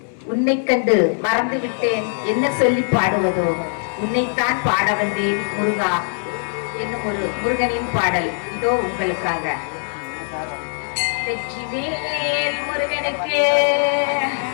உன்னை கண்டு மறந்து விட்டேன் என்ன சொல்லி பாடுவதோ உன்னைத்தான் பாட வந்தேன் முருகா என்னும் ஒரு முருகனின் பாடல் இதோ உங்களுக்காக. வெற்றிவேல் முருகனுக்கு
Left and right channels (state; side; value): silent; right; digital silence